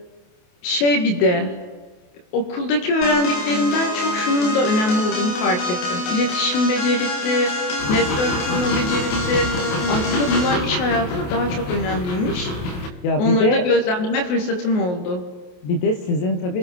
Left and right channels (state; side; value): late; right; 28 ms